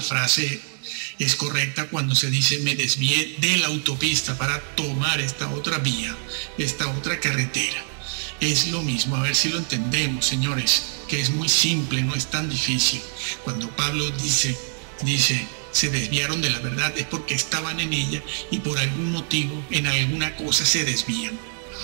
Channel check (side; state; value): left; silent; 62 dB below the other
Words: frase es correcta cuando se dice me desvié de la autopista para tomar esta otra vía, esta otra carretera. Es lo mismo, a ver si lo entendemos, señores, que es muy simple, no es tan difícil. Cuando Pablo dice se desviaron de la verdad es porque estaban en ella y por algún motivo, en alguna cosa se desvían.